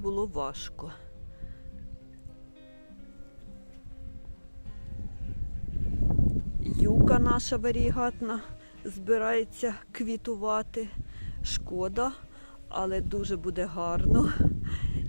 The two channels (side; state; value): both; inverted; correlation -1.00